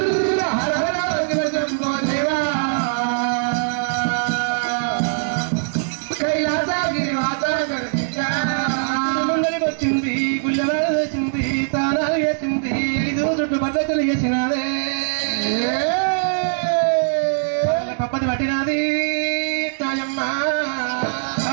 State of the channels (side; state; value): left; silent; digital silence